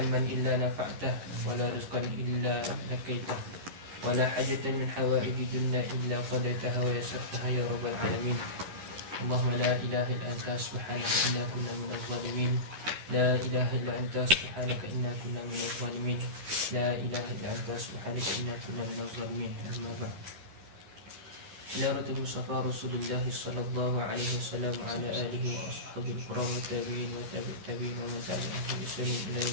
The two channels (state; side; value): late; left; 11 ms